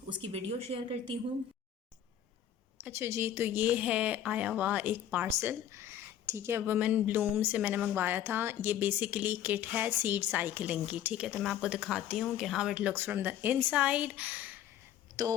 उसकी वीडियो शेयर करती हूँ। अच्छा जी, तो ये है आया हुआ एक पार्सल, ठीक है, वुमेन ब्लूम से मैंने मंगवाया था। ये बेसिकली किट है सीड साइकिलिंग की, ठीक है। तो मैं आपको दिखाती हूँ कि how it looks from the inside.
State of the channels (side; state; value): right; quieter; 10.5 dB